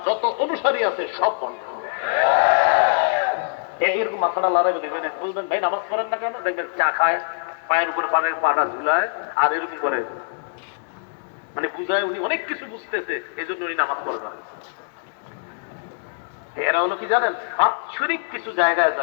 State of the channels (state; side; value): silent; right; digital silence